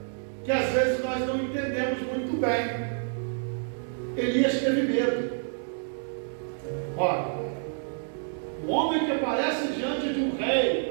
que às vezes nós não entendemos muito bem. Elias teve medo. Olha, o homem que aparece diante de um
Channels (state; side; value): silent; left; digital silence